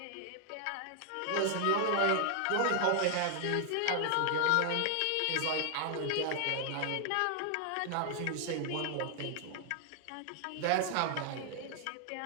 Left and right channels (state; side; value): different; both; correlation 0.00